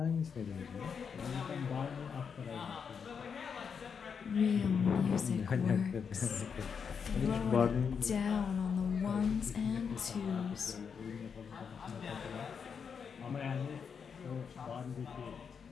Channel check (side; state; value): right; quieter; 6.5 dB